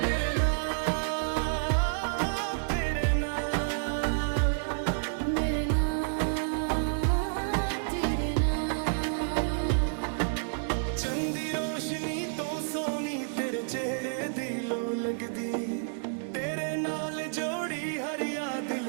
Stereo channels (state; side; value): silent; left; digital silence